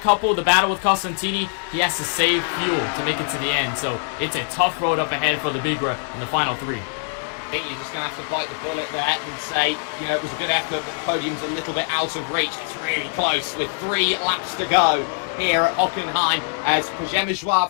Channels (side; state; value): right; silent; 57 dB below the other